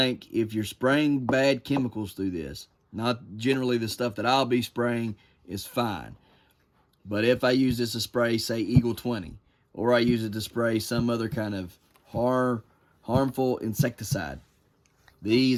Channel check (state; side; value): identical; both; correlation 1.00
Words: if you're spraying bad chemicals through this, not generally the stuff that I'll be spraying is fine. But if I use this to spray, say, Eagle 20, or I use it to spray some other kind of harmful insecticide,